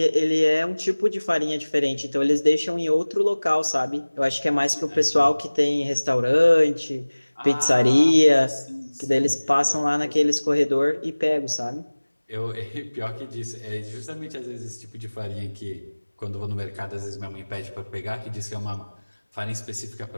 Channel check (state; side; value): inverted; both; correlation -1.00